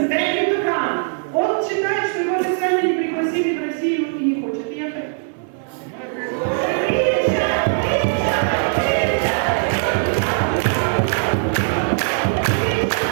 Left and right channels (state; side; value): silent; left; 58 dB below the other